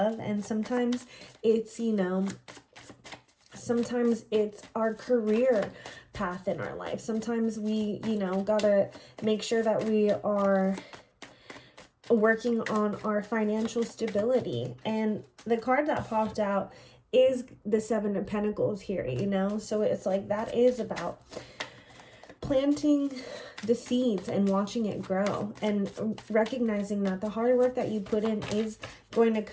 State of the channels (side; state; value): both; identical; correlation 1.00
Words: and sometimes it's, you know, sometimes it's our career path in our life. Sometimes we, you know, gotta make sure that we are working on our financial stability. And the card that popped out is the Seven of Pentacles here, you know? So it's like, that is about planting the seeds and watching it grow, and recognizing that the hard work that you put in is going to